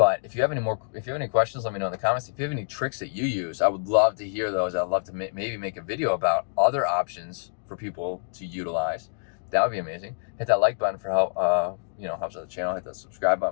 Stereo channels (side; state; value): right; silent; digital silence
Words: if you have any questions, let me know in the comments. If you have any tricks that you use, I would love to hear those. I'd love to maybe make a video about other options for people to utilize. That would be amazing. Hit that like button for help, helps out the channel. Hit that subscribe